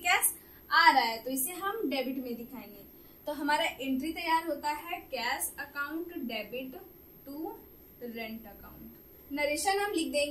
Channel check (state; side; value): identical; both; correlation 1.00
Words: आ रहा है, तो इसे हम डेबिट में दिखाएंगे। तो हमारा एंट्री तैयार होता है cash account debit to rent account. Narration हम लिख